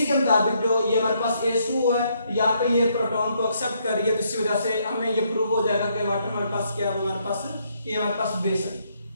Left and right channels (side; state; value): both; inverted; correlation -0.73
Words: के मुताबिक जो ये हमारे पास H2 है, यहाँ पे ये प्रोटॉन को एक्सेप्ट कर रही है, तो इसी वजह से हमें ये प्रूव हो जाएगा कि वाटर हमारे पास क्या है, हमारे पास ये हमारे पास बेस है।